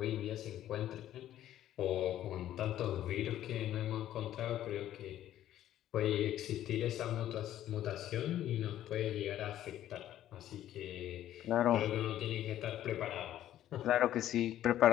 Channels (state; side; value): quieter; right; 12.3 dB